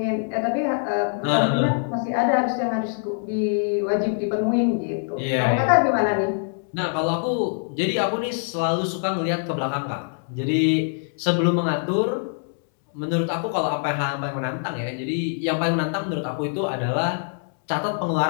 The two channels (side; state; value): right; silent; 63 dB below the other